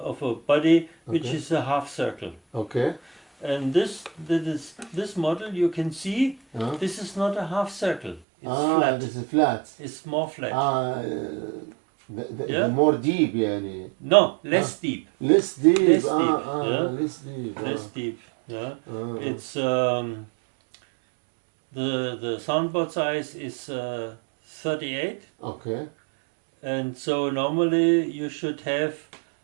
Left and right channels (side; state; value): left; drops out; at 8.2 s